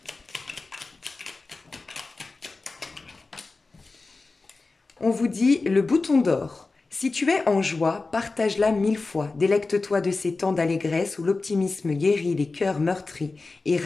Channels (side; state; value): right; quieter; 3.7 dB